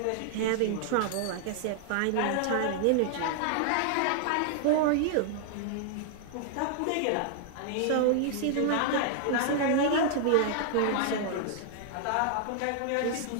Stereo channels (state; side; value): different; both; correlation -0.01